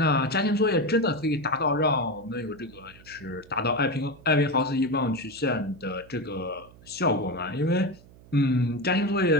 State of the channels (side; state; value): right; noise; hum, 23 dB below the sound